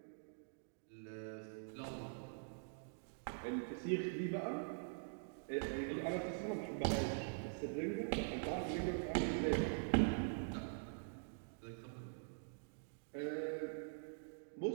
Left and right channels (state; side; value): silent; left; digital silence